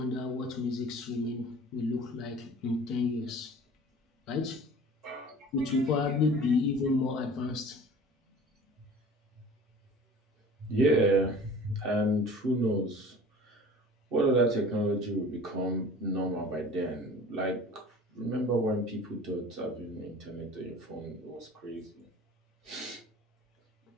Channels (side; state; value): both; normal; correlation 0.44